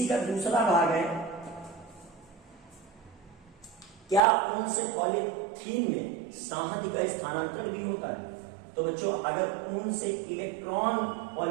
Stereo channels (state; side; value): drops out; left; at 4.2 s